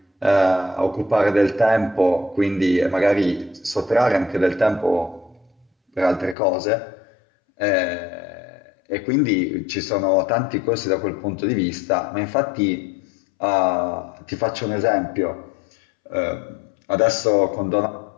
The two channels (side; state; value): right; drops out; at 6.4 s